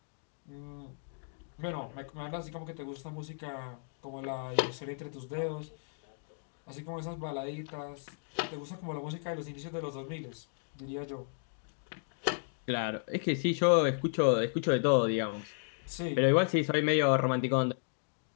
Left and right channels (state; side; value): silent; right; digital silence